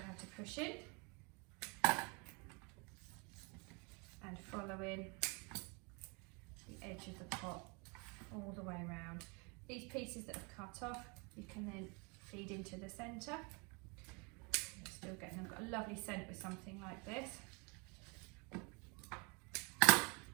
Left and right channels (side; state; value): left; quieter; 31.2 dB